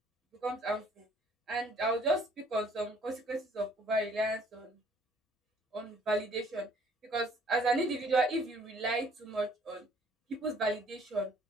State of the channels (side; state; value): both; normal; correlation 0.59